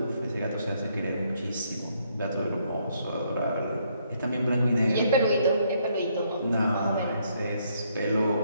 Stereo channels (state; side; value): inverted; both; correlation -0.71